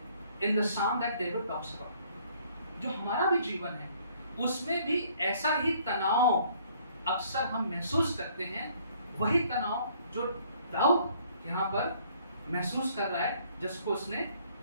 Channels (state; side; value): inverted; both; correlation -0.61